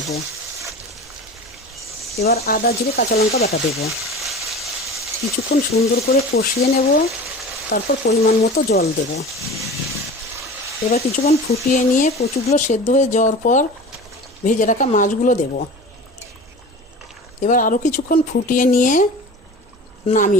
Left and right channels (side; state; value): both; normal; correlation 0.36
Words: এবার আদা জিরে কাঁচা লঙ্কা বাটা দেব। কিছুক্ষণ সুন্দর করে কষিয়ে নেব। তারপর পরিমাণ মতো জল দেব। এবার কিছুক্ষণ ফুটিয়ে নিয়ে কচুগুলো সেদ্ধ হয়ে যাওয়ার পর ভেজে রাখা মাছগুলো দেব। এবার আরও কিছুক্ষণ ফুটিয়ে নিয়ে